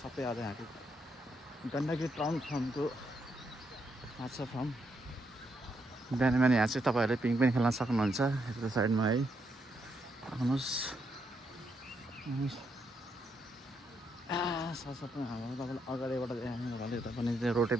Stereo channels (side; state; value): both; normal; correlation 0.78